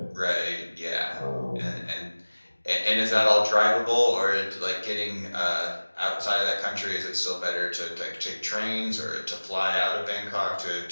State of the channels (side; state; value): both; inverted; correlation -1.00